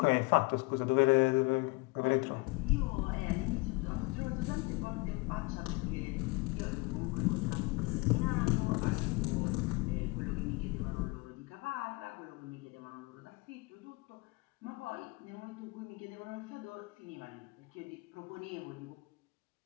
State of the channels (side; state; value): right; quieter; 25.3 dB